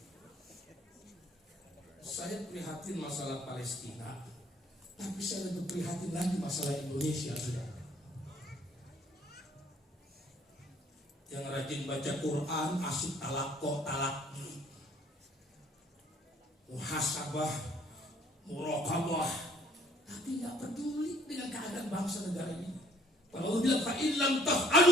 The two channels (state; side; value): normal; both; correlation 0.60